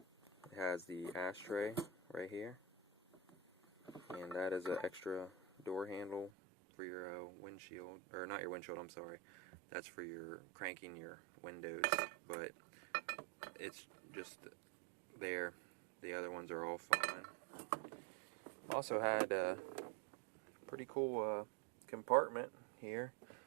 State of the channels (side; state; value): left; drops out; at 6.3 s